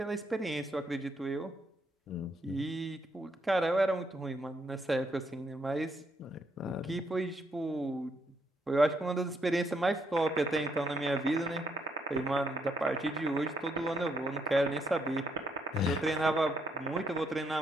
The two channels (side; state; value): both; normal; correlation 0.75